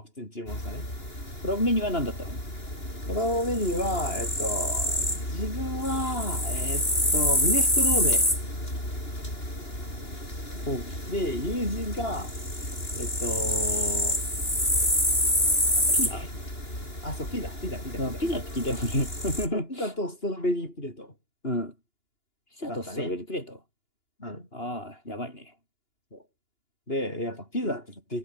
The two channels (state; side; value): late; right; 2.9 ms